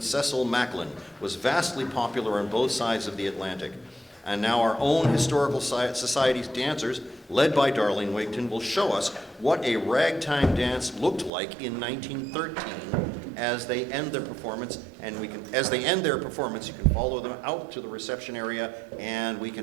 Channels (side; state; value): left; drops out; at 11.3 s